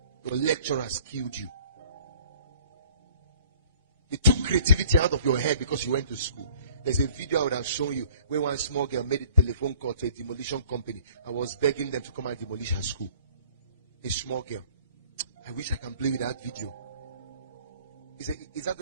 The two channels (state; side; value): inverted; both; correlation -0.54